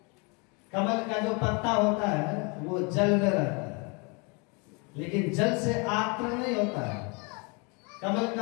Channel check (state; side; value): quieter; right; 31.7 dB